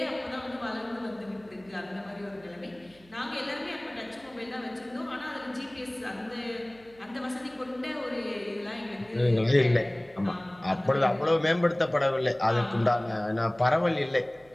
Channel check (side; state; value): right; noise; hum, 27 dB below the sound